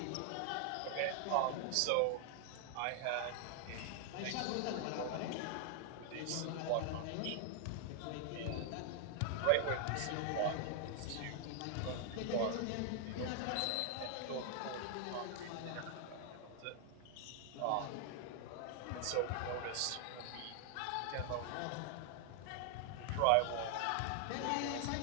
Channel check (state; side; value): different; both; correlation 0.00